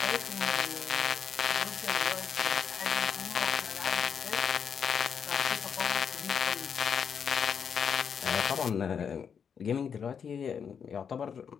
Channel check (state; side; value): quieter; right; 7.1 dB